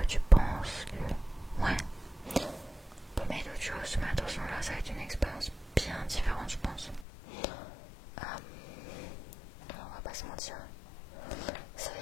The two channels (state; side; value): drops out; right; at 7.1 s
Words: tu penses que. Ouais. On peut mettre autre chose, mais attention là, ça va être une expérience bien différente, je pense. On va pas se mentir. Ça va